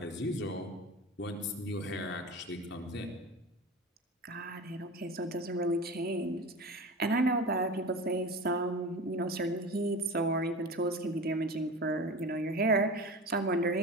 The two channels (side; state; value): both; normal; correlation 0.31